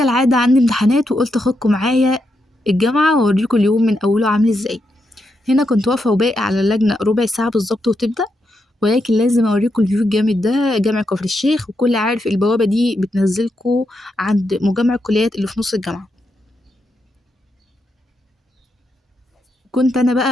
عندي امتحانات وقلت اخدكم معايا الجامعة واوريكم اليوم من اوله عامل ازاي. هنا كنت واقفة وباقي على اللجنة ربع ساعة بالظبط وتبدأ، ولكن لازم اوريكم الفيو الجامد ده. جامع كفر الشيخ، وكل عارف البوابة دي بتنزلكوا عند مجمع الكليات اللي في نص الجامعة. كنت انا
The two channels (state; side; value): normal; both; correlation 0.83